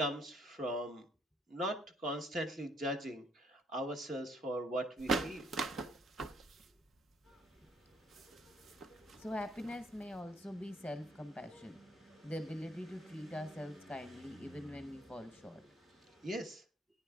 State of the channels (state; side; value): normal; both; correlation 0.67